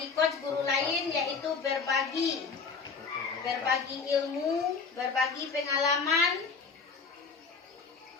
coach guru lain yaitu berbagi ilmu, berbagi pengalaman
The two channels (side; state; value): right; quieter; 5.0 dB